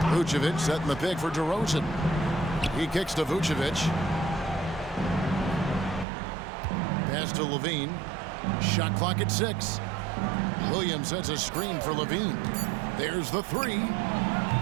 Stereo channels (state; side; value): drops out; left; at 6.1 s